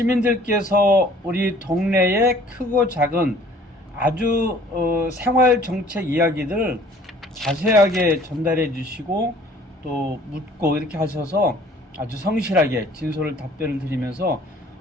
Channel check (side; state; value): both; normal; correlation 0.54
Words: 우리 동네의 크고 작은 아주 생활 정책 이야기들을 자세하게 전달해 주시고 또 묻고 이렇게 하셔서 아주 성실하게 진솔을 답변을 드리면서